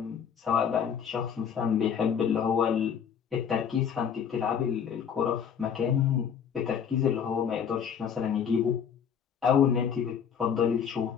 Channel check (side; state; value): right; quieter; 7.7 dB